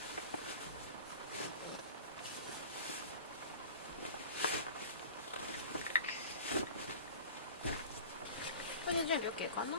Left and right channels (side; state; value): both; inverted; correlation -0.38